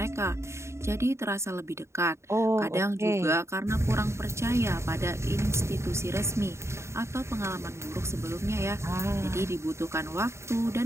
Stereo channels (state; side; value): late; left; 0.13 ms